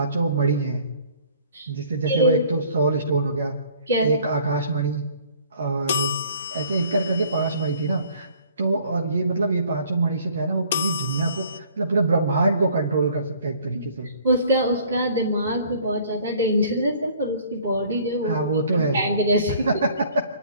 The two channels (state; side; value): inverted; both; correlation -0.55